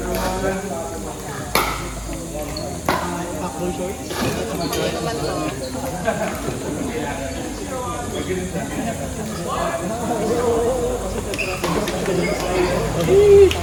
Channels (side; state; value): both; identical; correlation 1.00